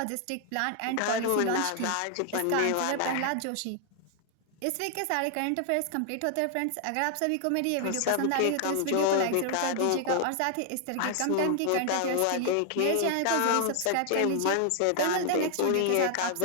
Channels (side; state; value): both; different; correlation 0.00